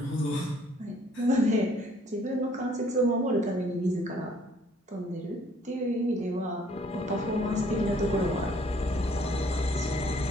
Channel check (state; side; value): normal; both; correlation 0.61